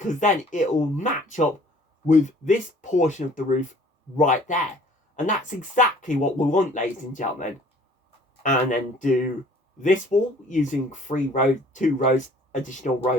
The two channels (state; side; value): normal; both; correlation 0.53